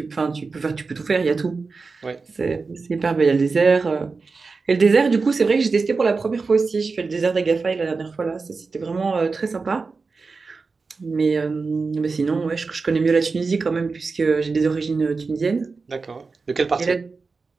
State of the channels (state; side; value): quieter; left; 4.3 dB